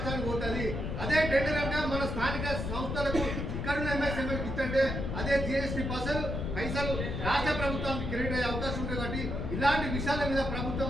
పోతుంది. అదే టెండర్ అంటే మన స్థానిక సంస్థలకు ఇక్కడున్న ఎంఎస్ఎంఎల్కి ఇచ్చంటే అదే జిఎస్టీ పైసలు రాష్ట్ర ప్రభుత్వానికి క్రెడిట్ అయ్యే అవకాశం ఉంటుంది. కాబట్టి ఇలాంటి విషయాల మీద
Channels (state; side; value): noise; left; rumble, 3 dB below the sound